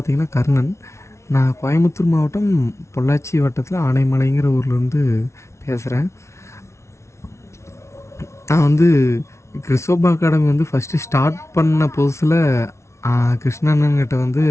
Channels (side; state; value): right; late; 0.13 ms